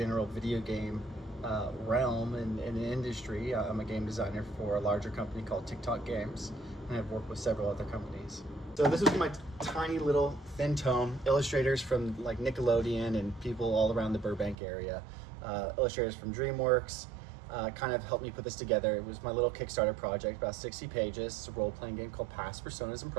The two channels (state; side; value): drops out; left; at 14.6 s